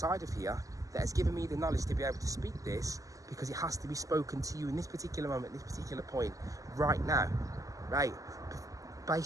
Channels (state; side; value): late; left; 0.16 ms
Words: of here that has given me the knowledge to be able to speak this, because it has to be spoken to you in this particular moment, this particular point, right now, right?